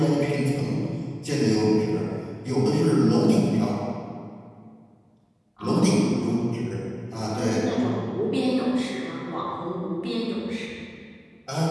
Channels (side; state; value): both; identical; correlation 1.00